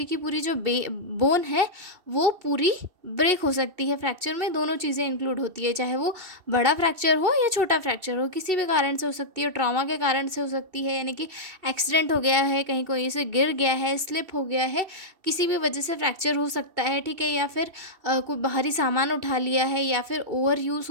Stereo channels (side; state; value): left; late; 2.7 ms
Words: की पूरी जो बोन है वो पूरी ब्रेक हो सकती है। फ्रैक्चर में दोनों चीज़ें इंक्लूड होती है, चाहे वो बड़ा फ्रैक्चर हो या छोटा फ्रैक्चर हो, किसी भी कारण से हो सकती है। ट्रॉमा के कारण से हो सकती है, यानी कि एक्सीडेंट हो गया है, कहीं कोई से गिर गया है, स्लिप हो गया है, किसी भी वजह से फ्रैक्चर हो सकता है। ठीक है, या फिर कोई बाहरी सामान उठा लिया है, या फिर ओवर